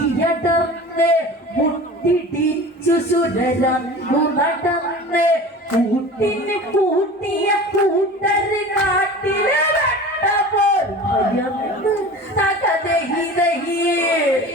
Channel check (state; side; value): normal; both; correlation 0.37